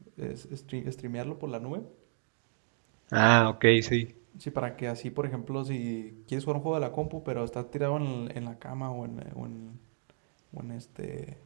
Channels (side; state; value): left; silent; digital silence